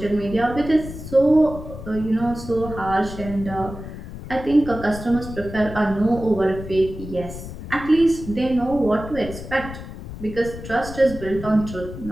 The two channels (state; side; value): noise; left; rumble, 11 dB below the sound